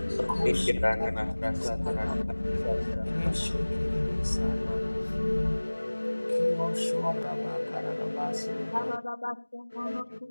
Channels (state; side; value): inverted; both; correlation -1.00